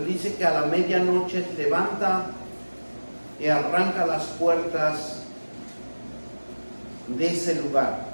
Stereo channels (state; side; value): inverted; both; correlation -1.00